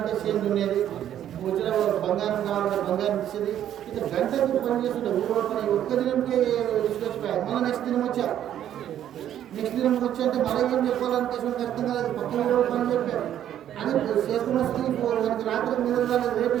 షేమ్ ఉండేది, వచ్చిన బంగారం కావాలంటే బంగారం ఇచ్చేది. ఇట్లా గంటకు పని చేస్తుంటే ఊరు పని ఒక్క దినంకే తీసుకొచ్చిపోయారు. మళ్ళీ నెక్స్ట్ దినం వచ్చారు. నెక్స్ట్ దినం వచ్చి అంటే మళ్ళీ ఏం చెప్పాలనిపిస్తుంది అర్థం కాలేదు. పక్కన ఊరు పని చెప్పారు అని చేసుకున్న స్థితి మనకి రాత్రి మీద రేపు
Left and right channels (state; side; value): quieter; left; 10.9 dB